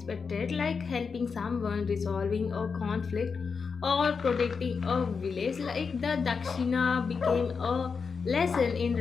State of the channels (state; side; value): quieter; right; 5.4 dB